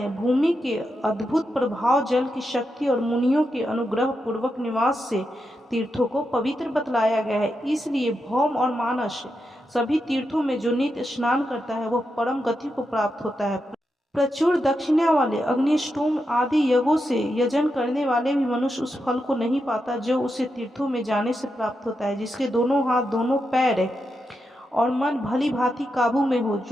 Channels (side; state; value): both; normal; correlation 0.86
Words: भूमि के अद्भुत प्रभाव, जल की शक्ति और मुनियों के अनुग्रह पूर्वक निवास से तीर्थों को पवित्र बतलाया गया है। इसलिए भौम और मानस सभी तीर्थों में जो नित्य स्नान करता है वह परम गति को प्राप्त होता है। प्रचुर दक्षिणा वाले अग्निष्टोम आदि यज्ञों से यजन करने वाले भी मनुष्य उस फल को नहीं पाता जो उसे तीर्थों में जाने से प्राप्त होता है। जिसके दोनों हाथ, दोनों पैर और मन भली भांति काबू में हो,